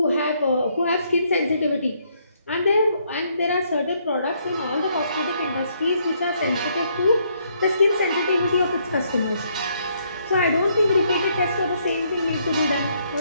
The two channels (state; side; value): inverted; both; correlation -0.71